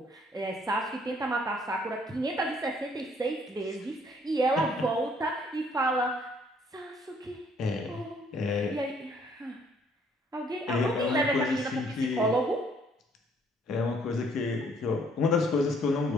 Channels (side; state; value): both; normal; correlation 0.64